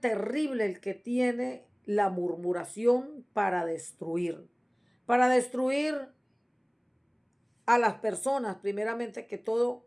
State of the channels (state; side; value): identical; both; correlation 1.00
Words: el que tiene la murmuración para destruir a las personas, primeramente que